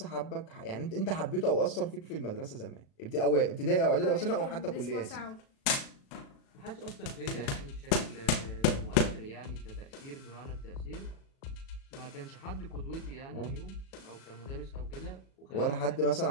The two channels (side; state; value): right; late; 36 ms